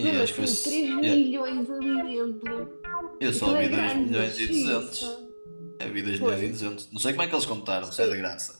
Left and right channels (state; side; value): inverted; both; correlation -1.00